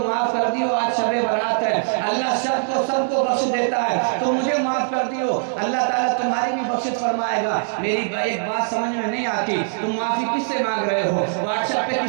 معاف کر دیو، آج شب برات ہے، اللہ سب کو بخش دیتا ہے تو مجھے معاف کر دیو، اللہ تعالیٰ تمہاری بھی بخشش فرمائے گا. میری ایک بات سمجھ میں نہیں آتی، تم معافی کس سے مانگ رہے ہو؟ واٹس ایپ پہ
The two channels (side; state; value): left; silent; digital silence